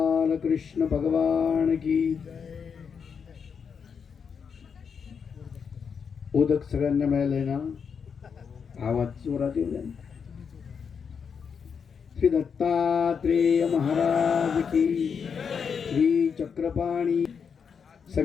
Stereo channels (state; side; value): quieter; right; 6.5 dB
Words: कृष्ण भगवान की उदक सगळ्यांना मिळालंय ना? आवाज जोरात येऊ द्या. श्री दत्तात्रेय महाराज की, श्री चक्रपाणी